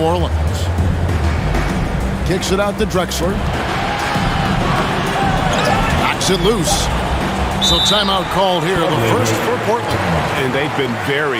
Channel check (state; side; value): identical; both; correlation 1.00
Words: Orleans. Kicks it out to Drexler. Knocks it loose. So timeout called here, the first for Portland. And they've been very